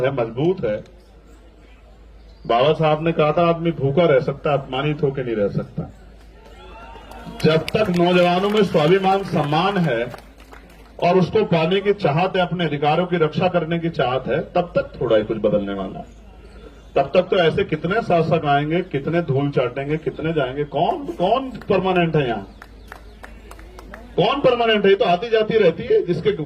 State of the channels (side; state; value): both; identical; correlation 1.00